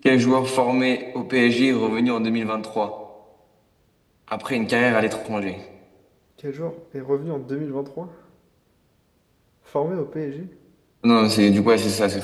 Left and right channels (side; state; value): both; identical; correlation 1.00